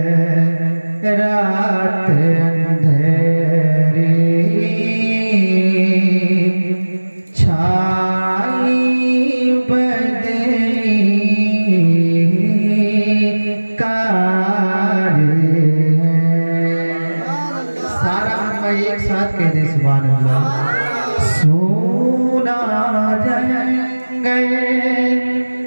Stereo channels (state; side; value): inverted; both; correlation -1.00